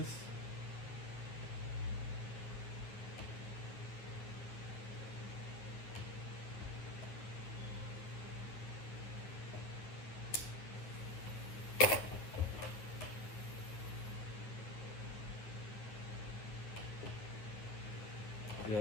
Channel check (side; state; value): right; late; 9.8 ms